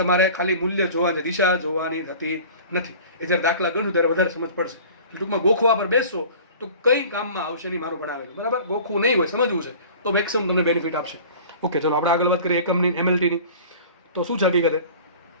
ખાલી મૂલ્ય જોવાની, દિશા જોવાની થતી નથી. એ જ્યારે દાખલા ગણશું ત્યારે વધારે સમજ પડશે. ટૂંકમાં ગોખવા પર બેસશો તો કઈ કામમાં આવશે નહીં મારું ભણાવેલું, બરાબર. ગોખવું નહીં હોય, સમજવું છે તો મેક્સિમમ તમને બેનિફિટ આપશે. ઓકે, ચલો આપણે આગળ વાત કરીએ એકમની, MLTની. તો શું છે હકીકતે?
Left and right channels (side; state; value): both; inverted; correlation -0.42